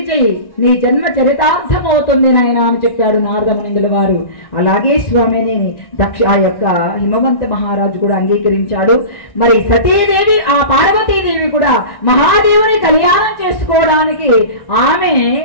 చెయ్యి, నీ జన్మ చరితార్థమవుతుంది నాయన అని చెప్పాడు నారద మునిందుల వారు. అలాగే స్వామిని ఆ యొక్క హిమవంత మహారాజు కూడా అంగీకరించాడు. మరి సతీదేవి ఆ పార్వతీదేవి కూడా మహాదేవుని కళ్యాణం చేసుకోవడానికి ఆమె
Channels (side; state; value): right; late; 1.4 ms